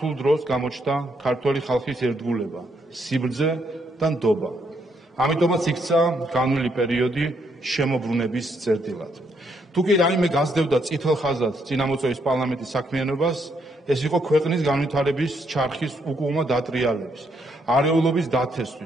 დროს გამოჩნდა ქართველი ხალხის ერთგულება, სიბრძე და ნდობა. ამიტომაც იქცა განვლილი პერიოდი შემოbrunების წერტილად. თუ კი რაიმე გასდევდა წითელ ხაზად წინამოწვევის პარლამენტის საქმიანობას, ეს იყო ქვეყნის განვითარების ჩარხის უკუღმა დატრიალების, არეულობის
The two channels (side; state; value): both; normal; correlation 0.74